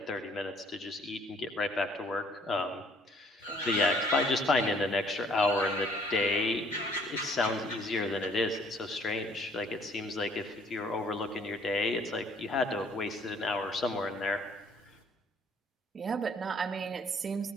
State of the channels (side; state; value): both; normal; correlation 0.60